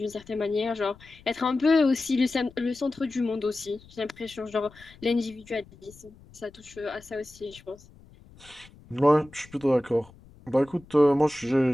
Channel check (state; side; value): noise; left; rumble, 24 dB below the sound